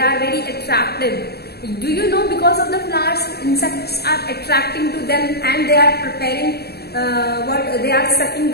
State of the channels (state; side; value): late; right; 0.47 ms